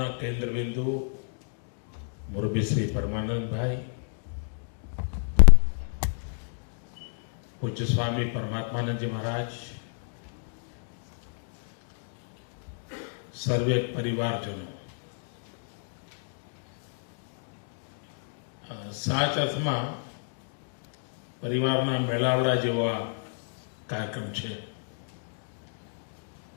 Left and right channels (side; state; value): right; silent; digital silence